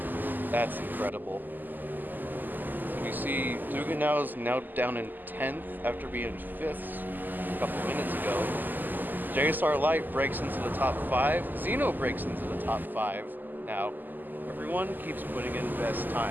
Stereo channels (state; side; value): late; left; 0.087 ms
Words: That's incredible. So we see Dugan is now down in 10th after being 5th a couple minutes ago. JSR Light breaks into the top 5. Xeno breaks into the top 5. Now, everyone keeps putting in best